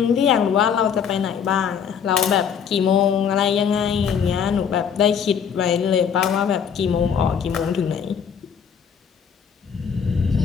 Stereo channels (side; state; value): right; quieter; 7.4 dB